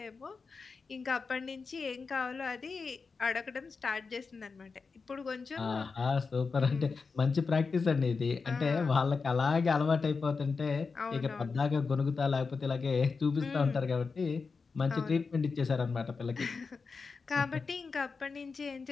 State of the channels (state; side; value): quieter; right; 4.7 dB